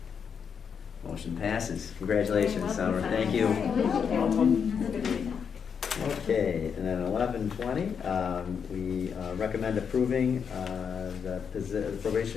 Motion passes. Congratulations, Summer. Thank you. Okay, and then 11:20, we recommend approving the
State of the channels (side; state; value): right; quieter; 6.8 dB